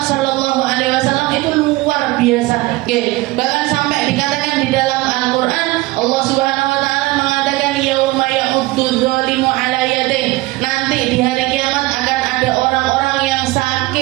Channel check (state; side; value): quieter; left; 20.0 dB